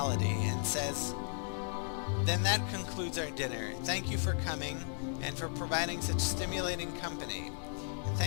and says, "Then that concludes our dinner. Thank you for coming, and for providing such stimulating company. And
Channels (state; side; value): silent; right; 54 dB below the other